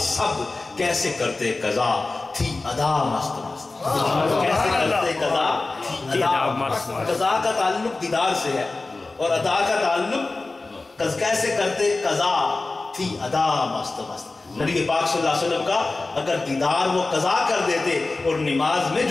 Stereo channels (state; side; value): quieter; right; 3.4 dB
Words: سب, کیسے کرتے قضا تھی ادا مست مست. کیسے کرتے قضا تھی ادا مست. قضا کا تعلق دیدار سے ہے اور ادا کا تعلق کیسے کرتے قضا تھی ادا مست مست. نبی پاک صلی اللہ علیہ وسلم کا اگر دیدار وہ قضا کر دیتے اور نماز میں